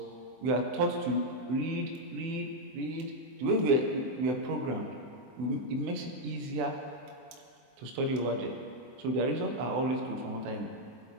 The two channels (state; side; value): late; left; 24 ms